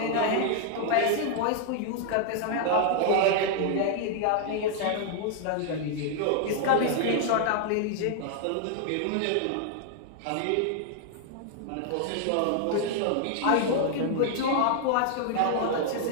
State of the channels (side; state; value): both; different; correlation 0.00